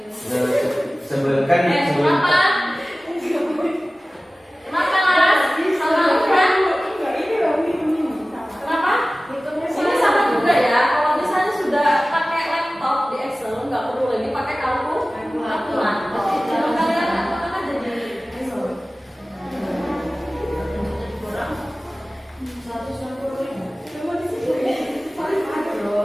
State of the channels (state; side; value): normal; both; correlation 0.97